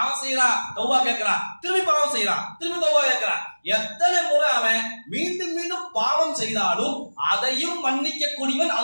செய்யறான், தௌபா கேட்கிறான், திரும்பி பாவம் செய்யறான், திரும்பி தௌபா கேட்கிறான். எத்தனை முறை அவன் மீண்டும் மீண்டும் பாவம் செய்தாலும் அதையும் மன்னிக்க கூடியவன்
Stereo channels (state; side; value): inverted; both; correlation -1.00